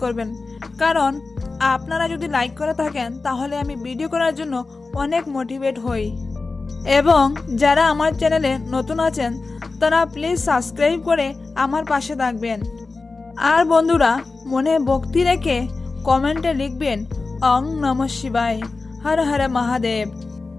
করবেন, কারণ আপনারা যদি লাইক করে থাকেন তাহলে আমি ভিডিও করার জন্য অনেক মোটিভেট হই। এবং যারা আমার চ্যানেলে নতুন আছেন তারা প্লিজ সাবস্ক্রাইব করে আমার পাশে থাকবেন। আর বন্ধুরা, মনে ভক্তি রেখে কমেন্টে লিখবেন ওং নমঃ শিবায়, হর হর মহাদেব।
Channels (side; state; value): right; quieter; 3.8 dB